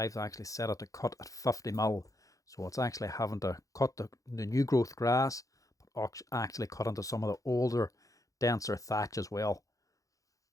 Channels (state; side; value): late; right; 0.16 ms